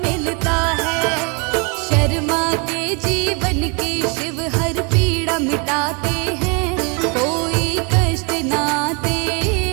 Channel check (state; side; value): quieter; left; 32.7 dB